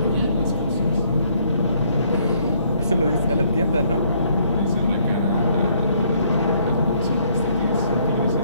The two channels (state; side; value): inverted; both; correlation -0.67